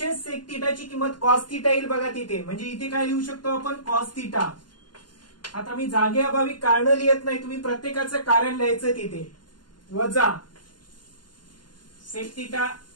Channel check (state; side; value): late; right; 0.71 ms